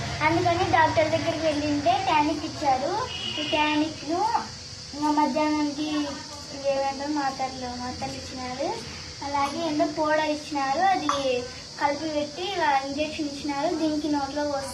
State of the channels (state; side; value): identical; both; correlation 1.00